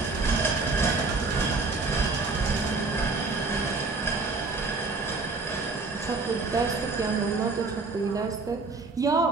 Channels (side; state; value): left; quieter; 3.8 dB